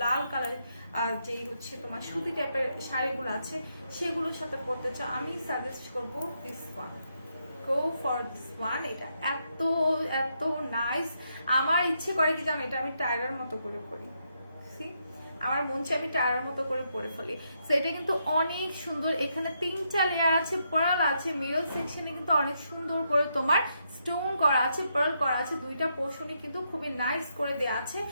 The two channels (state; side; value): inverted; both; correlation -0.79